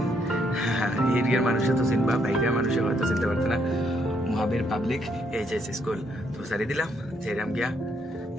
এরিয়ার মানুষে তো চিনবা, বাইরের মানুষে হয়তো চিনতে পারতো না। মহাবীর পাবলিক এইচএস স্কুল। তো সারি দিলাম যেরাম গিয়া।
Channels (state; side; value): normal; both; correlation 0.73